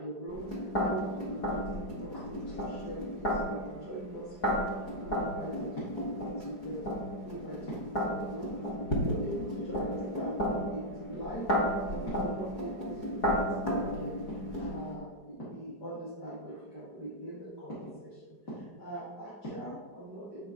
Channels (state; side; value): late; right; 4.9 ms